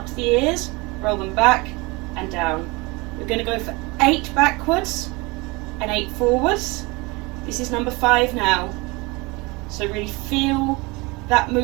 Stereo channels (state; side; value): quieter; left; 25.2 dB